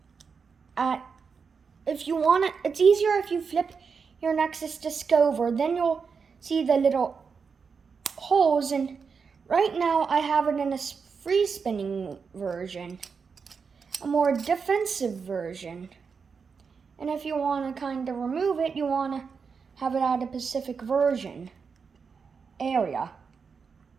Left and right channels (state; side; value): quieter; left; 5.6 dB